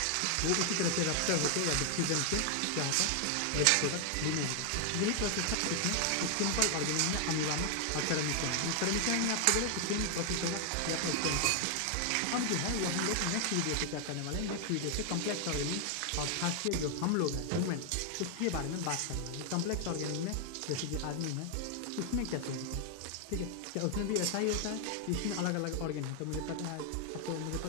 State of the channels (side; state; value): both; different; correlation 0.00